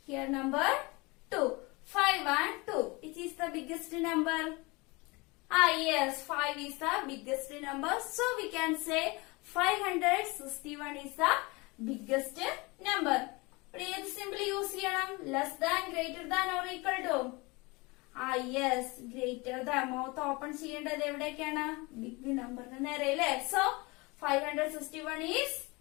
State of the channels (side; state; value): right; quieter; 25.5 dB